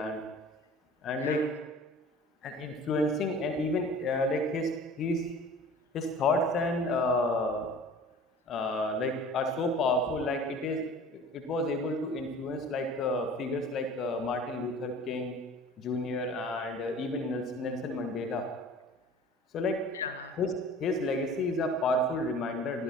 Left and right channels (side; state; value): both; normal; correlation 0.44